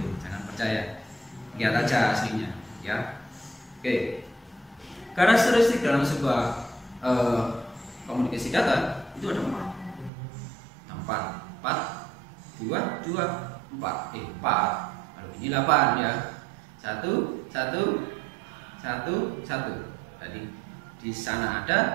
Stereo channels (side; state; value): left; drops out; at 10.1 s